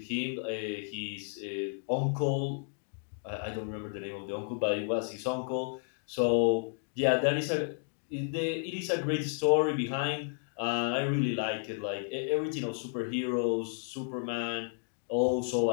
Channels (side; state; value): right; silent; 56 dB below the other